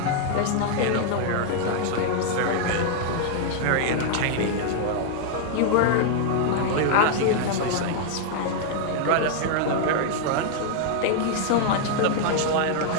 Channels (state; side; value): different; both; correlation 0.00